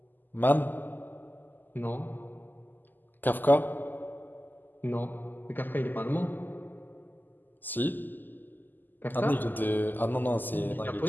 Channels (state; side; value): late; right; 0.088 ms